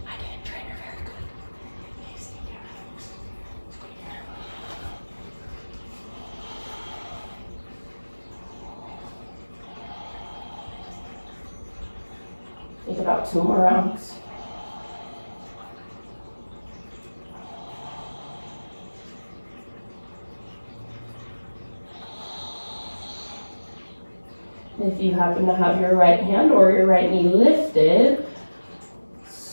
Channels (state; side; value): inverted; both; correlation -1.00